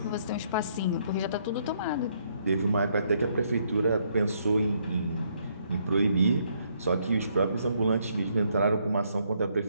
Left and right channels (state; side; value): inverted; both; correlation -0.71